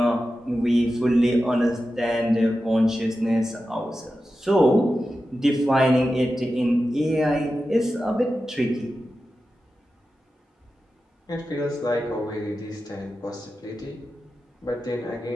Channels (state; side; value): normal; both; correlation 0.92